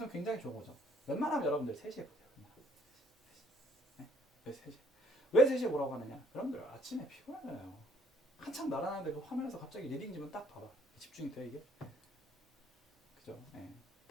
굉장히 좋은 거죠. 웬만하면 여러분들 3시에 보세요. 그냥. 네? 왜 3시? 왜 3시에 보라고 하느냐? 여러분들 아침에 피곤하잖아요. 한참 날아가는데 그 화면에서 갑자기 리딩지면 딱 봐봐. 집중이 돼 이게? 그죠? 예.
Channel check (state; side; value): normal; both; correlation 0.64